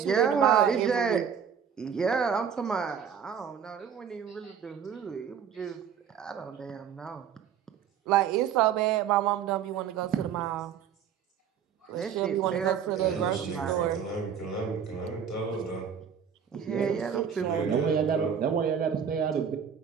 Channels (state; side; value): quieter; left; 7.9 dB